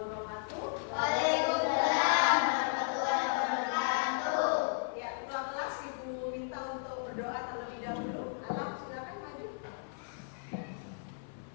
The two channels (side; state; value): right; silent; 55 dB below the other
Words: Waalaikumsalam warahmatullahi wabarakatuh. Ya, ketua kelas Ibu minta untuk berdoa terlebih dahulu. Alam, silakan maju.